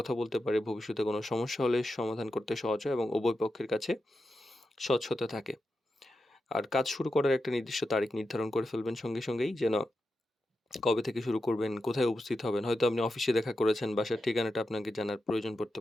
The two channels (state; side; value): normal; both; correlation 0.89